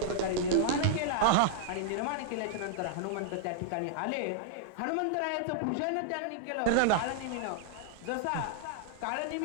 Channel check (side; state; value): both; different; correlation -0.01